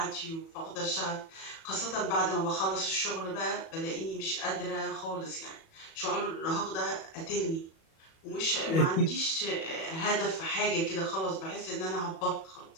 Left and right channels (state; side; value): late; right; 37 ms